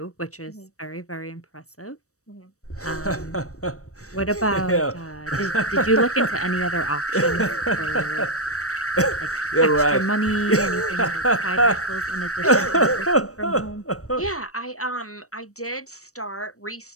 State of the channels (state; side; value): late; right; 0.65 ms